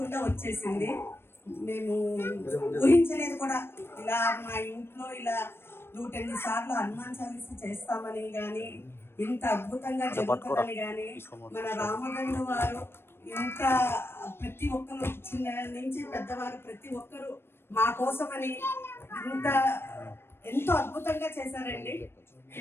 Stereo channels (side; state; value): right; late; 0.12 ms